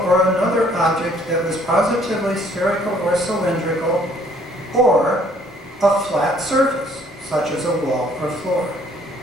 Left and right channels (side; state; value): both; normal; correlation 0.61